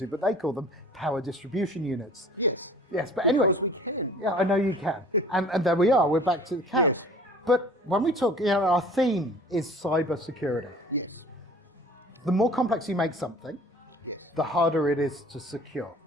but they call them power distribution units. Yes. Yes, but anyway. Because we can. Yeah, I know you can. And there we are, we're back to the can. Yes. But when we talk, our theme is cyber security. Yes. The more complex you make something, the harder it is to secure.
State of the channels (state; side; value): normal; both; correlation 0.47